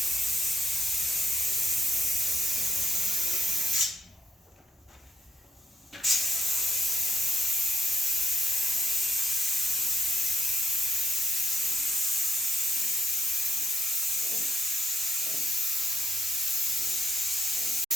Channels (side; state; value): both; normal; correlation 0.78